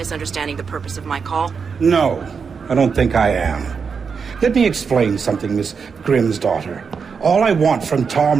the purpose of my call. No, I don't think I am. Let me explain something, Miss Grimm's daughter. All I want from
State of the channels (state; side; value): quieter; left; 5.8 dB